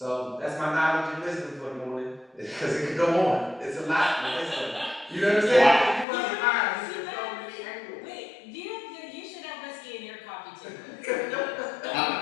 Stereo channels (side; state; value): right; drops out; at 6.1 s